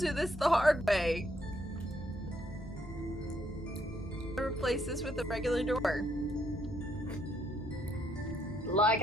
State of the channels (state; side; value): normal; both; correlation 0.72